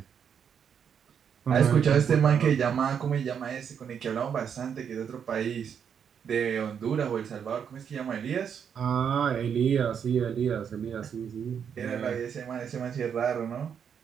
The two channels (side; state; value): left; quieter; 7.6 dB